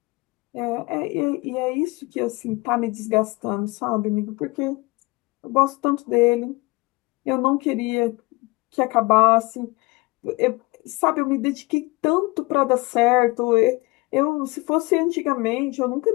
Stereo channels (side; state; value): right; quieter; 24.1 dB